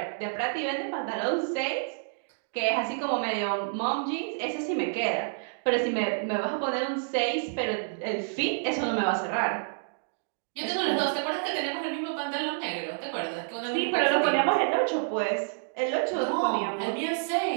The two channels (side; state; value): left; silent; digital silence